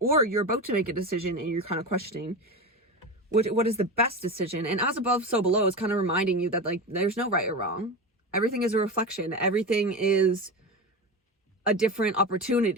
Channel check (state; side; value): normal; both; correlation 0.23